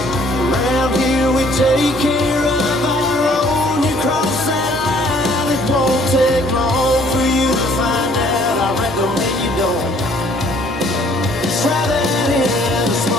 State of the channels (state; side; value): normal; both; correlation 0.59